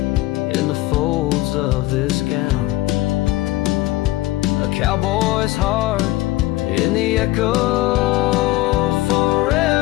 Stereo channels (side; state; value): right; quieter; 18.1 dB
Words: in the folds of this gown. A cowboy's heart in the echo,